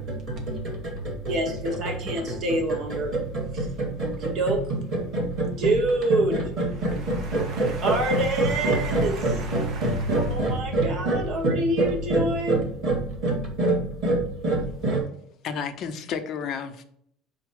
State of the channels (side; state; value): both; normal; correlation 0.39